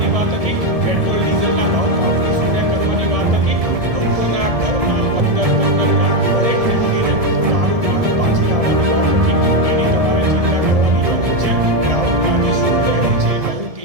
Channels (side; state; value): left; late; 1.7 ms